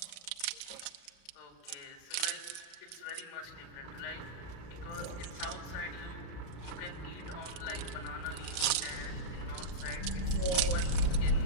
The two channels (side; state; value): right; late; 34 ms